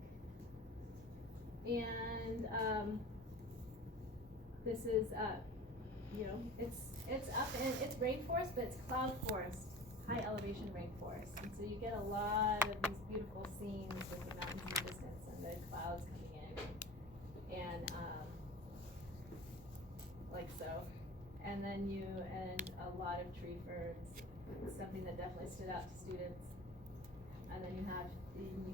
and this is it's up and it's rainforest, but it's cloud forest, high elevation rainforest. And so you get a lot of these beautiful scenes with the mountains in the distance and the clouds coming in. And like so. And then and a lot of tree ferns, something that definitely stood out to students. And then you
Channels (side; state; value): both; normal; correlation 0.36